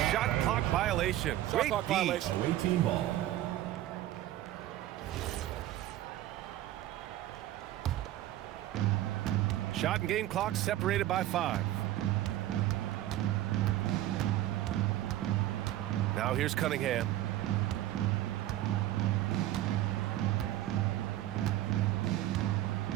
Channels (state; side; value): quieter; left; 14.0 dB